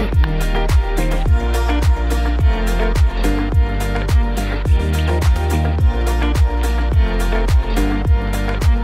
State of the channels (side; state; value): both; identical; correlation 1.00